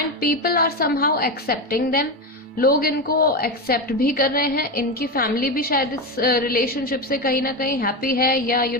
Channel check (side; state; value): both; normal; correlation 0.16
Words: people are somehow accepting them, लोग इनको एक्सेप्ट भी कर रहे हैं। इनकी फैमिली भी शायद इस रिलेशनशिप से कहीं ना कहीं हैप्पी है, या